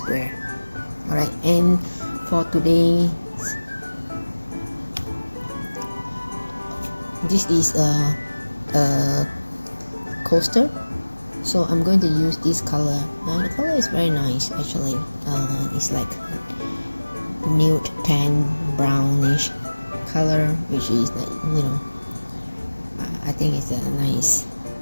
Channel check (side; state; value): both; inverted; correlation -1.00